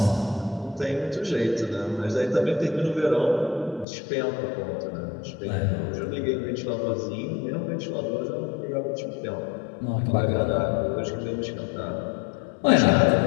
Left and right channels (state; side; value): drops out; right; at 3.9 s